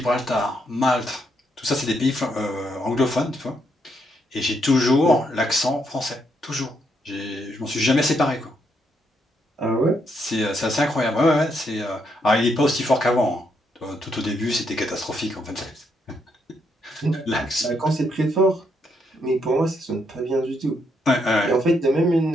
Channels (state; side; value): normal; both; correlation 0.76